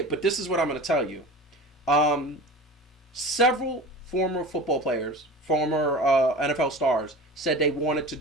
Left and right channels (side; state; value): both; normal; correlation 0.35